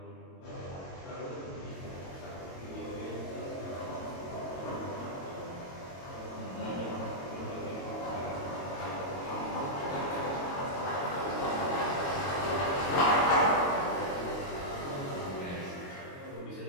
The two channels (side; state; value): right; late; 22 ms